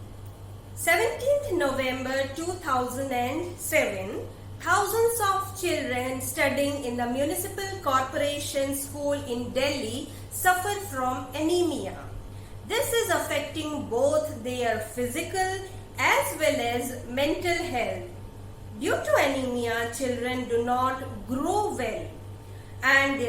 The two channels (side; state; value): both; identical; correlation 1.00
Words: 17th November 2007, Thousands of children studying in the municipal corporation school in Delhi suffer from anemia. This is affecting both their physical as well as mental health. Due to anemia, children do not grow well and